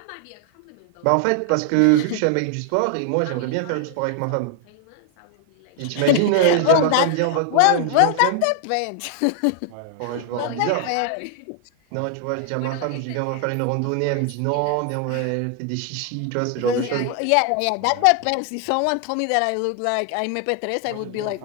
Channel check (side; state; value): both; different; correlation 0.00